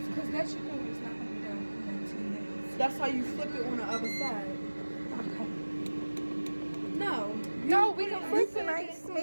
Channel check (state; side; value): inverted; both; correlation -1.00